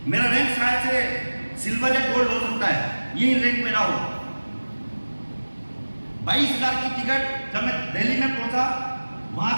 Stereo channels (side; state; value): both; inverted; correlation -1.00